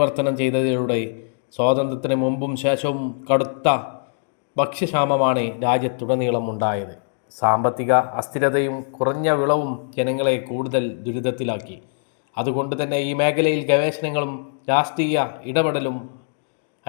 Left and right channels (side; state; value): right; silent; digital silence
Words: ചെയ്തതിലൂടെ സ്വാതന്ത്ര്യത്തിന് മുമ്പും ശേഷവും കടുത്ത ഭക്ഷ്യക്ഷാമമാണ് രാജ്യത്തുടനീളം ഉണ്ടായത്. സാമ്പത്തിക അസ്ഥിരതയും കുറഞ്ഞ വിളവും ജനങ്ങളെ കൂടുതൽ ദുരിതത്തിലാക്കി. അതുകൊണ്ട് തന്നെ ഈ മേഖലയിൽ ഗവേഷണങ്ങളും രാഷ്ട്രീയ ഇടപെടലും